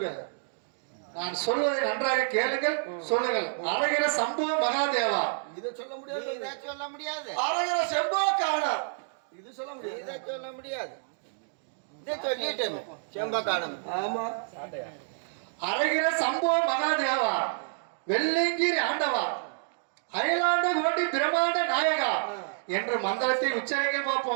நான் சொல்வதை நன்றாக கேளுங்கள், சொல்லுங்கள். அரகிற சம்போ மகாதேவா. இதை சொல்ல முடியாது, இதை சொல்ல முடியாது. அரகிற செம்போ காணா, இது சொல்ல முடியாது. இதை சொல்ல முடியாது. இதை சொல்லிட்டேன் செம்பக்கானம். ஆமா, அரகிற சம்போ மகாதேவா, வெள்ளைங்கிரி ஆண்டவா, அயலாண்ட கோட்டி பிரமாண்ட நாயகா என்று மந்திரத்தை உச்சரிக்க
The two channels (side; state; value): left; silent; digital silence